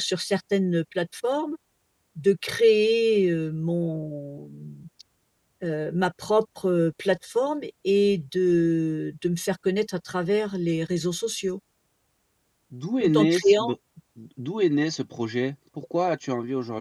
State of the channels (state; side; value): identical; both; correlation 1.00